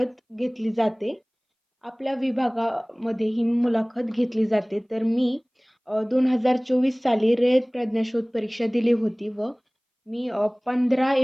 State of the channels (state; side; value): identical; both; correlation 1.00